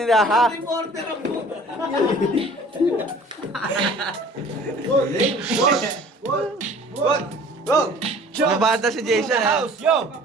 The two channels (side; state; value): both; normal; correlation 0.48